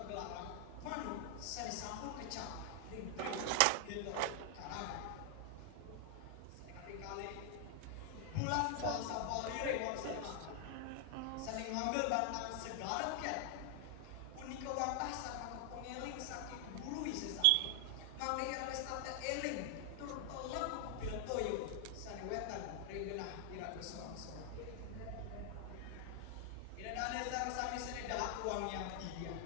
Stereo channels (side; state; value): both; different; correlation 0.00